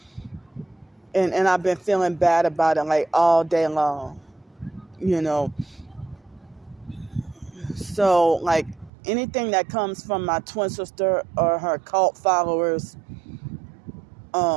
And I've been feeling bad about it like all day long, you know. So like anything that comes from my twin sister or her cult followers,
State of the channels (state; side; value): drops out; left; at 8.9 s